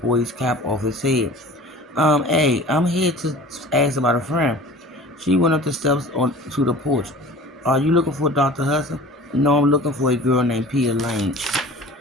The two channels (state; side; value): normal; both; correlation 0.42